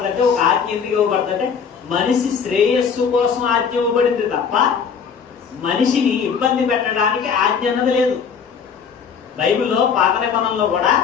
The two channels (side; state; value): right; quieter; 6.5 dB